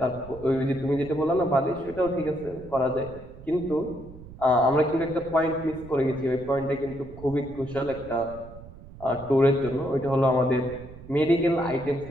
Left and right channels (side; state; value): right; noise; rumble, 17 dB below the sound